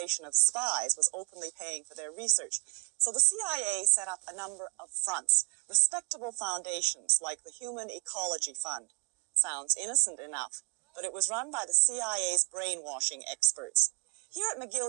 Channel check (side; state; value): left; quieter; 31.2 dB